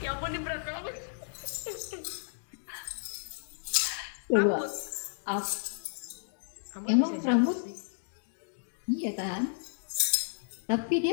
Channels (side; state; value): right; silent; digital silence